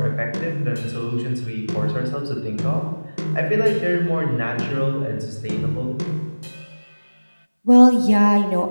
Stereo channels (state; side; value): inverted; both; correlation -1.00